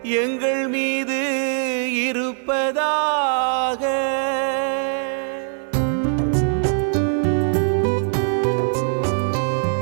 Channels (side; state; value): left; silent; digital silence